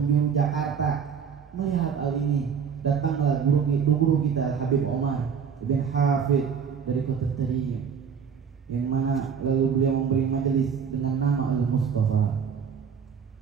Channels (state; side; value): quieter; left; 6.8 dB